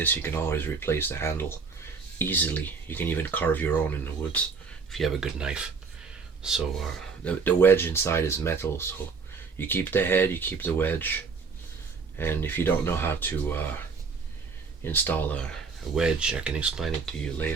you can always replace the handle easily. You can even carve your own in the woods if you have a good knife. So the wedge inside is metal, so you keep the head, you keep the wedge. And if you don't know how to install a wedge, I can explain it to you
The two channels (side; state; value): left; quieter; 5.1 dB